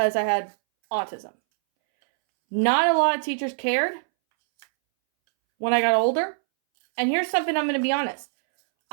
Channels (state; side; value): silent; left; 63 dB below the other